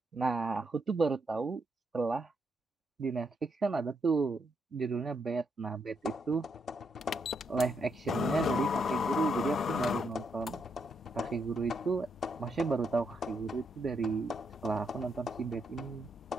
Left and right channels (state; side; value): normal; both; correlation 0.78